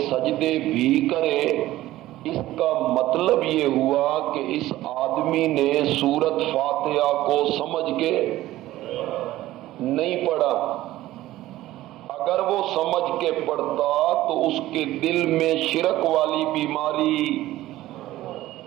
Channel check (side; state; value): left; quieter; 15.6 dB